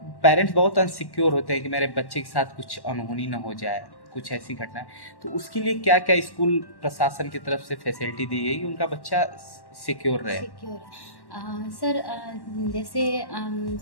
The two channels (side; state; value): right; late; 1.1 ms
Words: पेरेंट्स बहुत अनसिक्योर होते हैं कि मेरे बच्चे के साथ कुछ अनहोनी ना हो जाए, कुछ ऐसी घटना है, तो उसके लिए क्या क्या स्कूल प्रशासन की तरफ से फैसिलिटी दी गई कि उनका बच्चा सिक्योर रहे? सर, जैसे